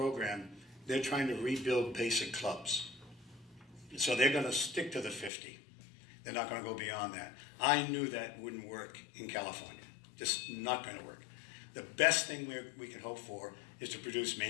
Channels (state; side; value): drops out; right; at 5.3 s